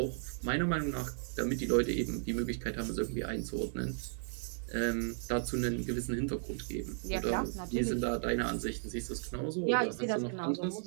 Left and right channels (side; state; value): left; silent; 54 dB below the other